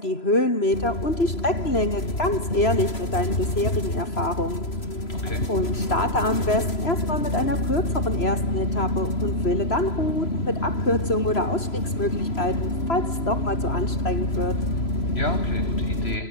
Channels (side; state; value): right; late; 3.0 ms